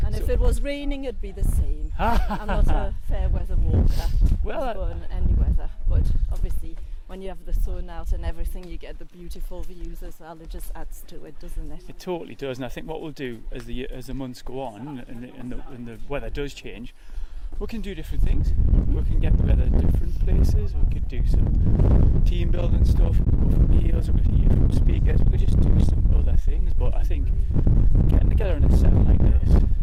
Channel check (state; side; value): identical; both; correlation 1.00